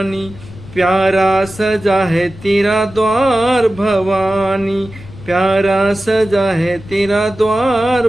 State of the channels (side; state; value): left; noise; rumble, 18 dB below the sound